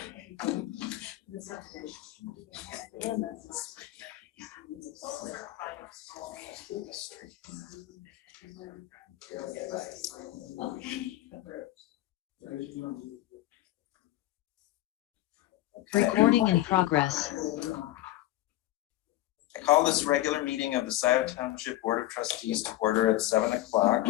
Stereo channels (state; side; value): quieter; right; 15.8 dB